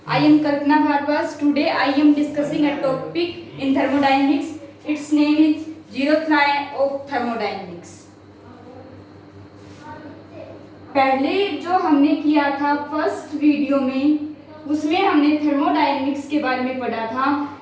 I am Kalpana Bhargava. Today I am discussing a topic in thermodynamics. Its name is zeroth law of thermodynamics. पहले जो हमने किया था first video में, उसमें हमने थर्मोडायनेमिक्स के बारे में पढ़ा था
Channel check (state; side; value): identical; both; correlation 1.00